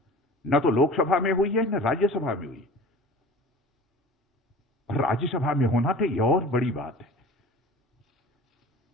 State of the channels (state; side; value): normal; both; correlation 0.40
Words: न तो लोकसभा में हुई है न राज्यसभा में हुई। और राज्यसभा में होना तो यह और बड़ी बात है।